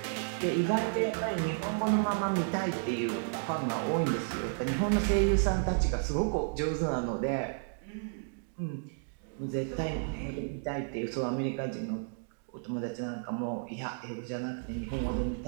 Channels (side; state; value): left; silent; digital silence